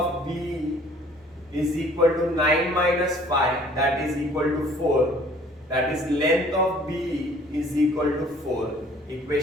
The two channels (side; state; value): both; normal; correlation 0.55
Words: B is equal to 9 minus 5, that is equal to 4. That is length of B is equal to 4.